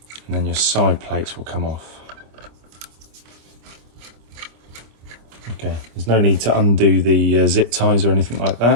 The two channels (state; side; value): late; left; 26 ms